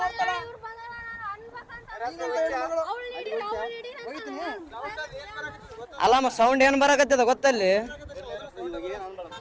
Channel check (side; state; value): both; identical; correlation 1.00